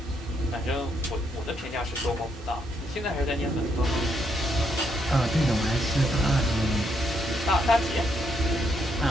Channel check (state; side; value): normal; both; correlation 0.75